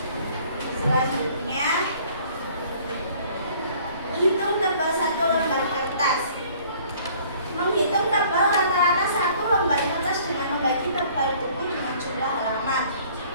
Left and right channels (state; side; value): inverted; both; correlation -0.55